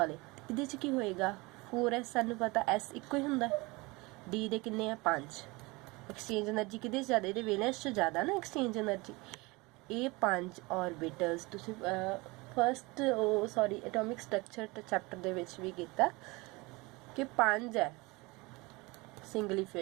ਇਹਦੇ 'ਚ ਕੀ ਹੋਏਗਾ 4s ਸਾਨੂੰ ਪਤਾ S ਇੱਕੋ ਹੀ ਹੁੰਦਾ, D ਦੇ ਕਿੰਨੇ ਆ 5। एक्सचेंज एनर्जी कि ज़्यादा, ये वैलेंस ज़्यादा ना एक्सचेंज एनर्जी, ये 5 ऑर्बिटल्स तुसी first sorry atomic structure chapter दे विच भी कीता कि 5 है सिंगली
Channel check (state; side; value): quieter; left; 24.3 dB